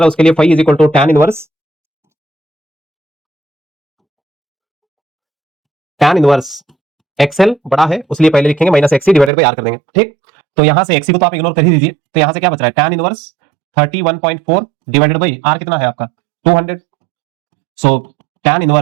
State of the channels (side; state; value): left; drops out; at 9.3 s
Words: है उसके लिए phi is equal to tan inverse XL बड़ा है उसलिए पहले लिखेंगे minus XC divided by R कर देंगे, ठीक। तो यहां से एक्सी को तो आप इग्नोर कर ही दीजिए, तो यहां से क्या बच रहा है tan inverse 31.4 divided by R कितना है आपका 200, so tan